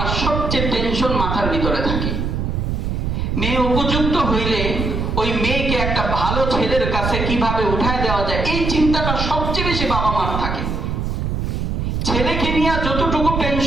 সবচেয়ে টেনশন মাথার ভিতরে থাকে। মেয়ে উপযুক্ত হইলে ওই মেয়েকে একটা ভালো ছেলের কাছে কিভাবে উঠায় দেওয়া যায়, এই চিন্তাটা সবচেয়ে বেশি বাবা মার থাকে। ছেলেকে নিয়ে যতটুকু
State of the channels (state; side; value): noise; right; rumble, 1 dB below the sound